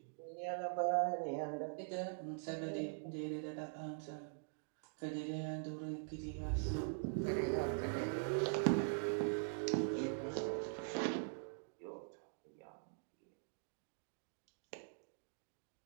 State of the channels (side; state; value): left; silent; digital silence